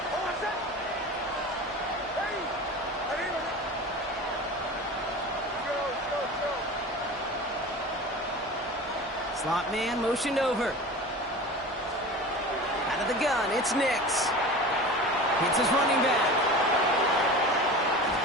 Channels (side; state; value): both; normal; correlation 0.34